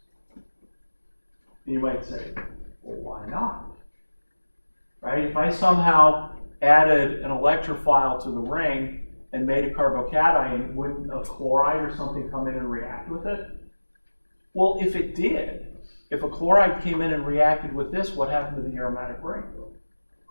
And you might say, well, why not? Right? If I somehow added an electrophile to the ring and made a carbocation, wouldn't a chloride or something come in and react with it? Well, if it did, if a chloride came in and reacted with this, what happened to the aromatic ring?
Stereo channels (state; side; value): inverted; both; correlation -1.00